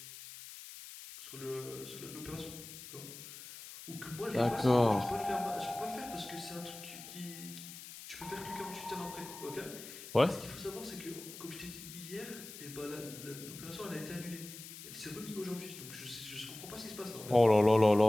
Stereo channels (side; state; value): left; noise; hiss, 13 dB below the sound